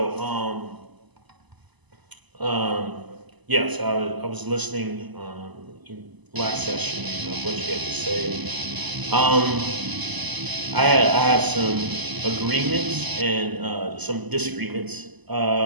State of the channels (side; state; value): left; late; 1.0 ms